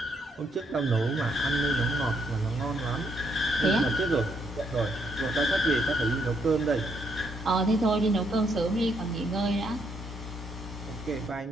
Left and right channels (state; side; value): normal; both; correlation 0.74